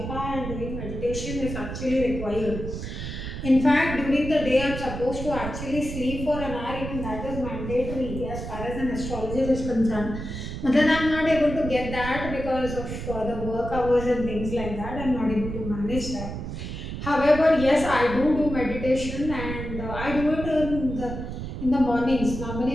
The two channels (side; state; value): right; noise; rumble, 7 dB below the sound